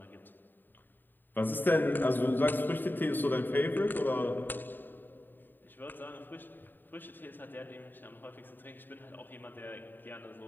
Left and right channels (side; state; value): right; late; 0.092 ms